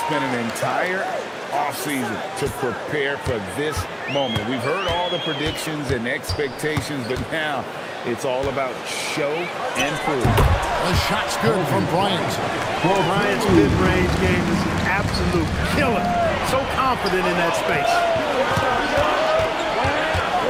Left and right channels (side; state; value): both; identical; correlation 1.00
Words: an entire offseason to prepare for this moment. We've heard all the predictions and expectations, but now it's all about show and prove. The shot's good from Bryant. Bryant's mid-range game is an absolute killer. So confident in that space.